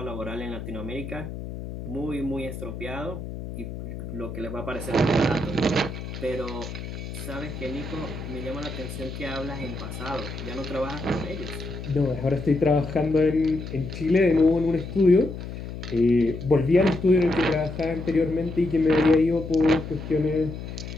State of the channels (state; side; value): noise; left; hum, 9 dB below the sound